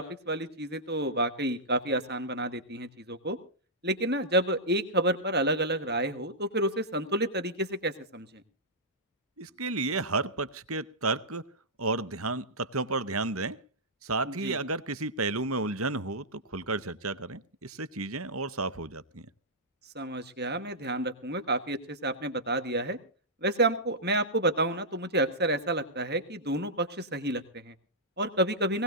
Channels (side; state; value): both; normal; correlation -0.12